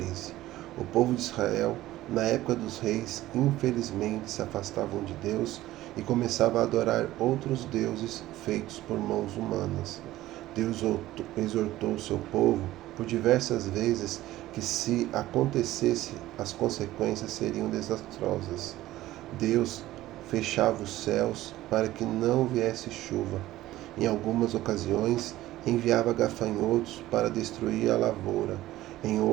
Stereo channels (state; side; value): quieter; left; 15.7 dB